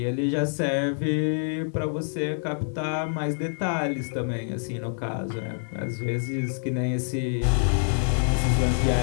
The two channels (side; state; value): right; silent; digital silence